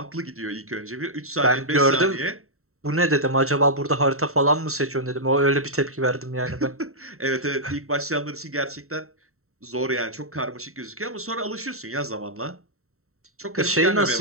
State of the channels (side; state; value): left; late; 0.63 ms